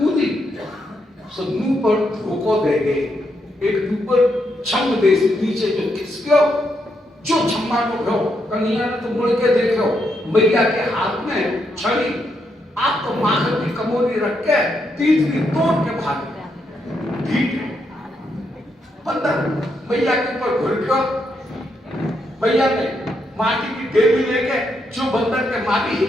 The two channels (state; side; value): normal; both; correlation 0.79